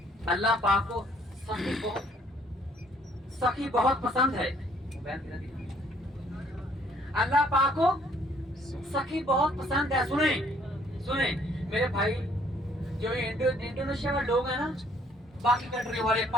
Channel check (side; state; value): both; normal; correlation 0.63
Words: اللہ پاک کو سخی بہت پسند ہے, اللہ پاک کو سخی بہت پسند ہے. سنیں میرے بھائی, جو انڈونیشیا میں لوگ ہیں نا, باقی کنٹری والے,